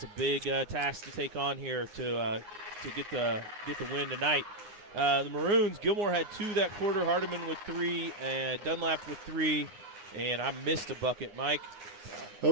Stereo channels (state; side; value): late; left; 9.6 ms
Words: a big task to take on here to get the win tonight. The Maroons, Gilmore had 2 that quarter, Hardiman with 3, and Dunlap with 3, and I missed a bucket, Mike. Well,